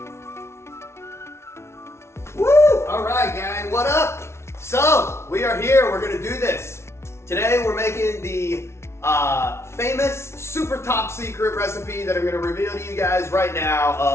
Woo! All right, gang, what up? So, we are here, we're gonna do this. Today, we're making the famous, super top secret recipe that I'm gonna reveal to you guys right now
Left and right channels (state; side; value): late; right; 0.13 ms